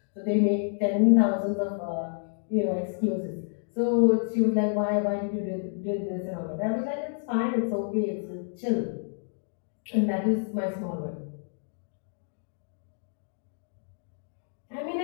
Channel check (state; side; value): silent; right; digital silence